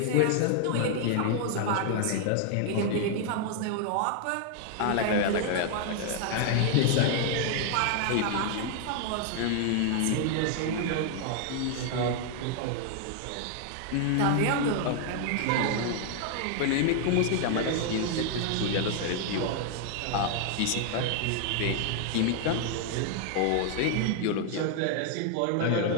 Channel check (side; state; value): both; different; correlation 0.00